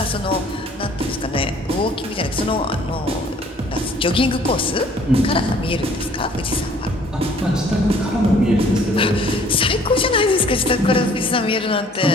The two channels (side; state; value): both; normal; correlation 0.57